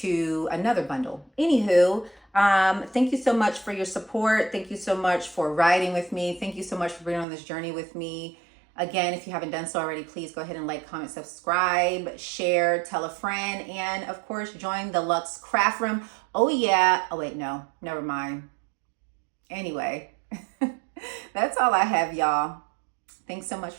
to another bundle. Anywho, thank you so much for your support. Thank you so much for riding with me. Thank you so much for being on this journey with me. Again, if you haven't done so already, please go ahead and like, comment, subscribe, share, tell a friend, and of course, join the Luxe Craft Room. Oh yeah. Oh wait, no, never mind. Anyway, that's all I have, y'all. Thanks so much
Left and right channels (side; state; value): left; drops out; at 7.2 s